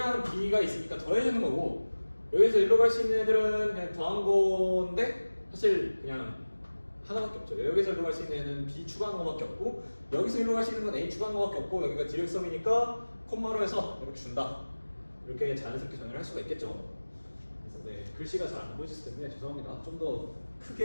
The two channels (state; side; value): inverted; both; correlation -1.00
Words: B가 있으니까 더해주는 거고, 여기서 일로 갈 수 있는 애들은 그냥 더한 건데 사실 그냥 하나밖에 없죠. 여기서 일로 갈 수 있는 애는 B 추가한 거밖에 없고, 여기서 일로 갈 수 있는 건 A 추가한 거밖에 없고, 여기가 디렉섬이니까 콤마로 해서 이렇게 준다. 이렇게 자연스럽게 정의를 할 수가 있겠죠. 그래서 네, 글씨가 잘 안 보이실 텐데 죄송합니다. 좀 더